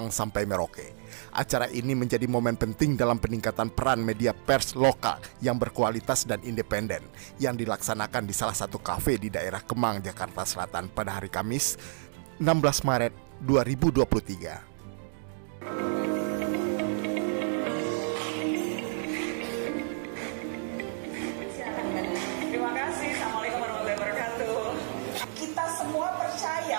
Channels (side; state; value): left; silent; digital silence